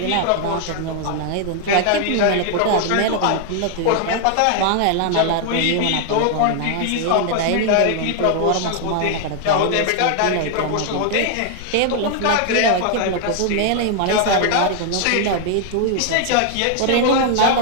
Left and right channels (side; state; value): both; different; correlation 0.00